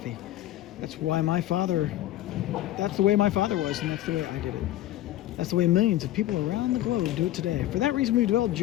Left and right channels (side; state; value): right; quieter; 14.3 dB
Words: That's the way my father was, and that's the way I did it. That's the way millions of people around the globe do it today. For that reason, we developed